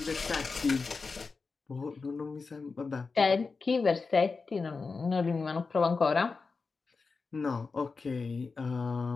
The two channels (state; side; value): quieter; right; 4.4 dB